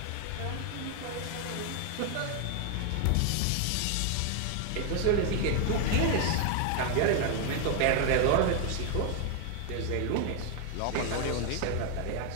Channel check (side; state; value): both; different; correlation 0.00